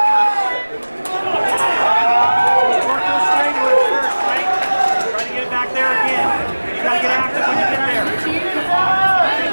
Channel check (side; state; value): both; inverted; correlation -1.00